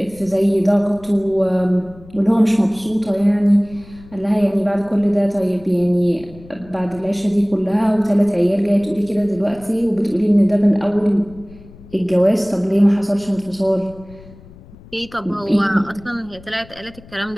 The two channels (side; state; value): left; noise; rumble, 21 dB below the sound